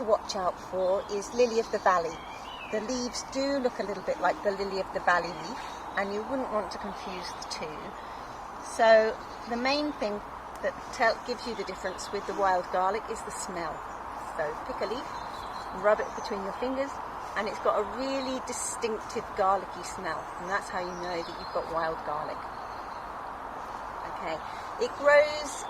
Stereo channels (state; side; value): identical; both; correlation 1.00